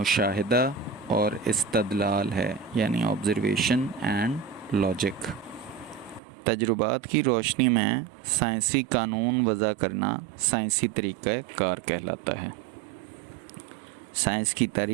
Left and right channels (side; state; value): left; drops out; at 6.2 s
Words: اور استدلال ہے، یعنی آبزرویشن اینڈ لاجک. تجربات کی روشنی میں سائنسی قانون وضع کرنا سائنسی طریقہ کار کہلاتا ہے. سائنس کی